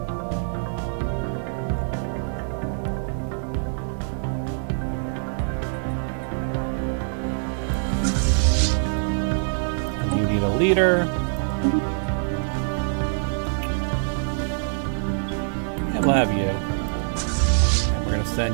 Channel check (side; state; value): left; silent; digital silence